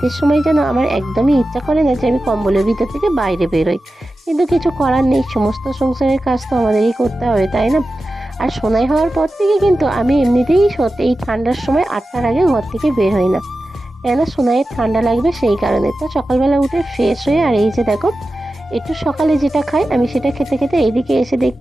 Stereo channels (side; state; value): both; normal; correlation 0.93